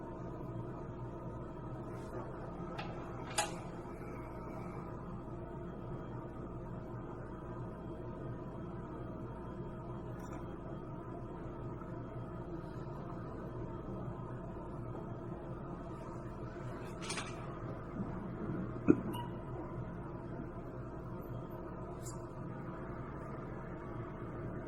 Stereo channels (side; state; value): both; identical; correlation 1.00